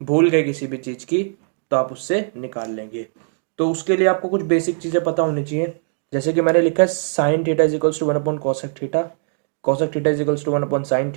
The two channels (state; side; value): silent; left; digital silence